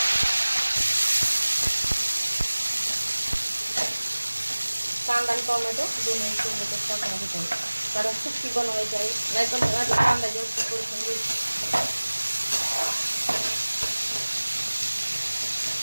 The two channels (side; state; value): both; inverted; correlation -1.00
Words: कांदा आणि टोमॅटो दोन्ही सोबतच टाकून घेत आहे, कारण सुक्की बनवायची आहे, नाहीतर मग आधी कांदा जास्त परतून घ्यायचा।